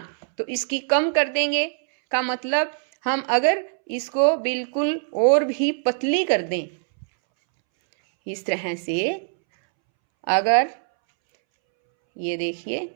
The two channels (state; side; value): silent; left; 64 dB below the other